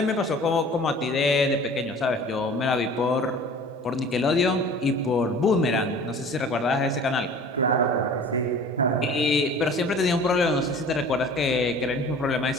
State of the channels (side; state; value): both; normal; correlation 0.44